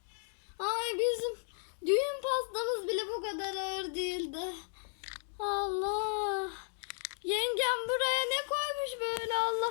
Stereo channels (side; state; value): right; silent; digital silence